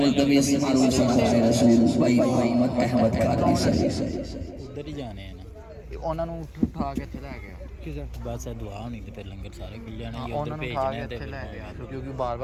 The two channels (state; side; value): identical; both; correlation 1.00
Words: ادھر ہی جانے ہیں نا اٹھا کے اتنے لے گیا بس دعا ہونی تو پھر لنگر سارے کھل جانے انہوں نے اٹھا کے اتنے لے گیا کیونکہ بار